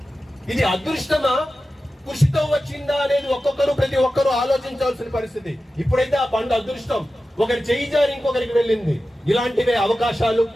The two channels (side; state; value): both; normal; correlation 0.93